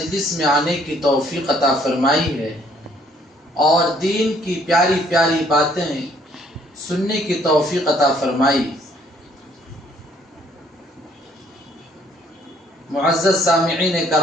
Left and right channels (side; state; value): both; normal; correlation 0.63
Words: میں آنے کی توفیق عطا فرمائی ہے اور دین کی پیاری پیاری باتیں سننے کی توفیق عطا فرمائی. معزز سامعین